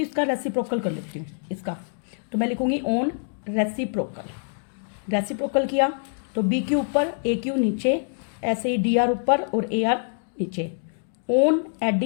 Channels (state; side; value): silent; right; digital silence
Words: इसका रेसिप्रोकल कर लेती हूँ इसका, तो मैं लिखूंगी ऑन रेसिप्रोकल। रेसिप्रोकल किया तो BQ ऊपर AQ नीचे, ऐसे ही DR ऊपर और AR नीचे। On